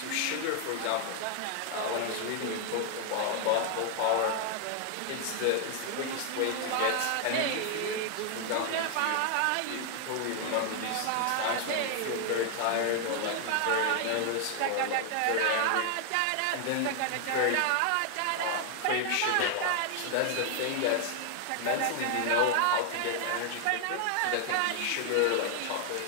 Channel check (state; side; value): different; both; correlation 0.00